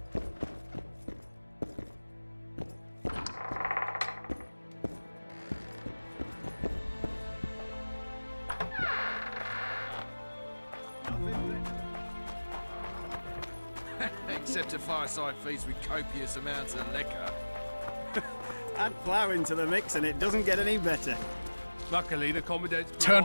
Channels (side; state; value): both; inverted; correlation -1.00